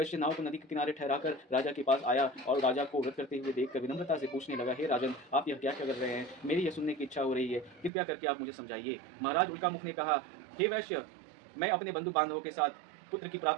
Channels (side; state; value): left; drops out; at 7.9 s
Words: नाव को नदी के किनारे ठहराकर राजा के पास आया और राजा को व्रत करते हुए देखकर विनम्रता से पूछने लगा, हे राजन, आप यह क्या कर रहे हैं? मेरी यह सुनने की इच्छा हो रही है, कृपया करके आप मुझे समझाइए। महाराज उल्कामुख ने कहा, हे वैश्य, मैं अपने बंधु बांधवों के साथ पुत्र की